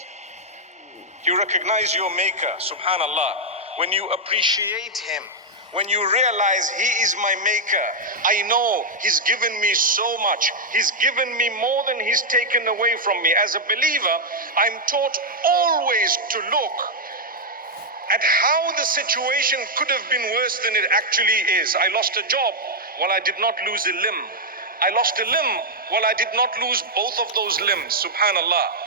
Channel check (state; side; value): normal; both; correlation -0.02